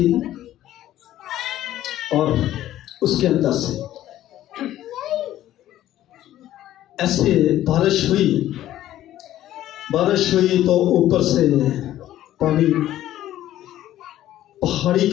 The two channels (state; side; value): quieter; right; 13.2 dB